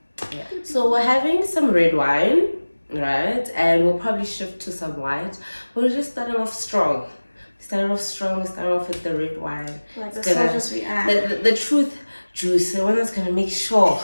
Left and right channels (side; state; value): both; inverted; correlation -1.00